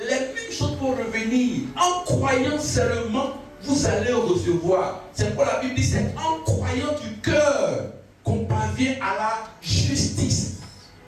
mêmes choses vont revenir. En croyant seulement, vous allez recevoir. C'est pourquoi la Bible dit, c'est en croyant du cœur qu'on parvient à la justice.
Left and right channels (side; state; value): both; identical; correlation 1.00